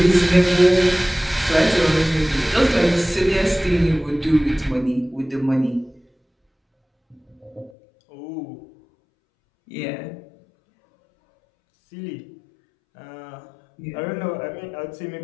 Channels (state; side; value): drops out; right; at 7.7 s